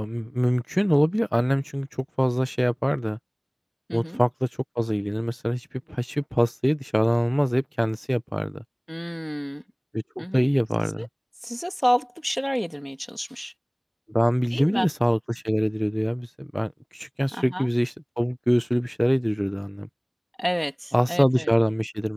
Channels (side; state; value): both; identical; correlation 1.00